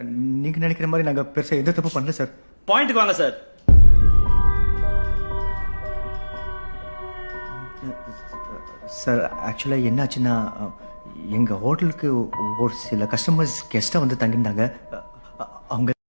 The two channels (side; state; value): both; inverted; correlation -1.00